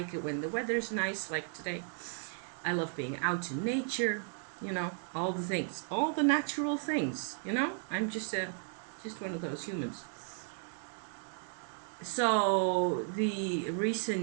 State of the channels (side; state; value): left; silent; 55 dB below the other